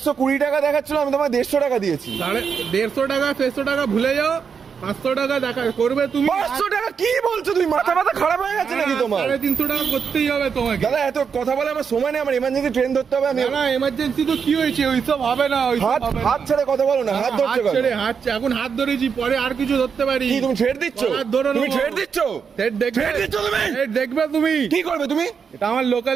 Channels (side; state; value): left; quieter; 6.4 dB